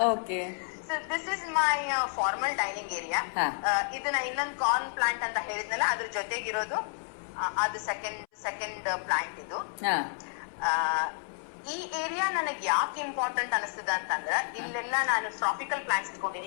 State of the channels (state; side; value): silent; right; 57 dB below the other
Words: Okay. So this is my formal dining area. ಇದನ್ನ ಇನ್ನೊಂದು corn plant ಅಂತ ಹೇಳಿದ್ನಲ್ಲ, ಅದ್ರ ಜೊತೆಗಿರೋದು ಅದು ಸೆಕೆಂಡ್ ಪ್ಲಾಂಟ್ ಇದು. ಈ area ನನಗೆ ಯಾಕೆ ಇಂಪಾರ್ಟೆಂಟ್ ಅನಿಸ್ತದ ಅಂತಂದ್ರ, ಇಲ್ಲೆಲ್ಲ ನಾನು ಟ್ರಾಪಿಕಲ್ ಪ್ಲಾಂಟ್ಸ್ ಇಟ್ಕೊಂಡಿನಿ.